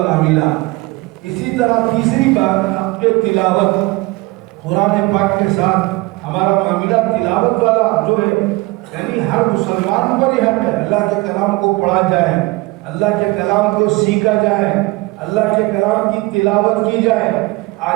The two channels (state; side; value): quieter; left; 22.7 dB